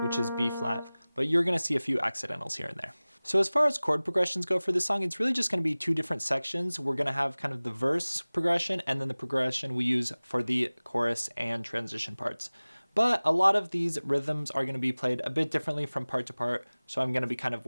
which is B flat, but you're gonna see a few accidentals here and there. So as far as chord progressions go for this song, it's really just gonna be two different sections. We're gonna have kind of the verse progression and then the progression we use for the chorus and transition parts. But a lot of these rhythms are gonna be played a bit differently from part to part, so I'm gonna be kind of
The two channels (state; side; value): inverted; both; correlation -0.99